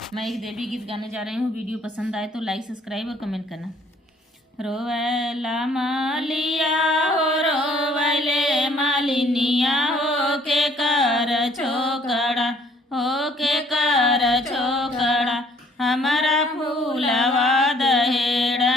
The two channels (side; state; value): both; normal; correlation 0.61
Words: मैं एक देवी गीत गाने जा रही हूँ। वीडियो पसंद आए तो लाइक, सब्सक्राइब और कमेंट करना। रोवैला मालिया हो रोवैले मालिनिया हो के कर छोकड़ा, हो के कर छोकड़ा, हमारा फूलवा